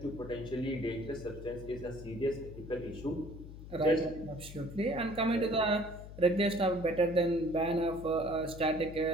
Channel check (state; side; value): noise; left; hum, 13 dB below the sound